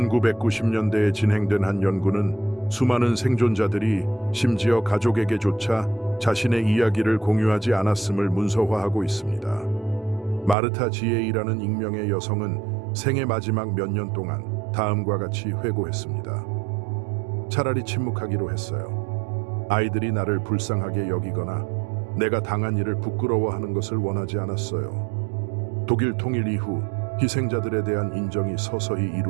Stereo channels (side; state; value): left; drops out; at 10.6 s